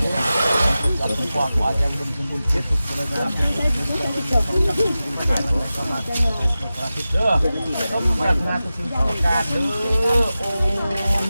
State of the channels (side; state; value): both; inverted; correlation -0.95